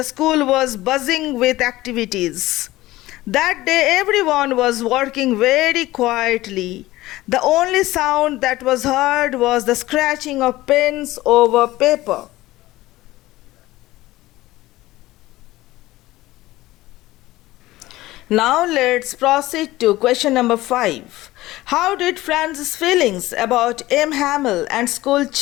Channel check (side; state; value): right; quieter; 17.5 dB